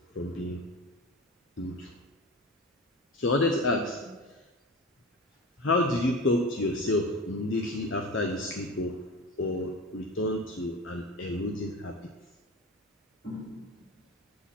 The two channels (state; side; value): normal; both; correlation 0.30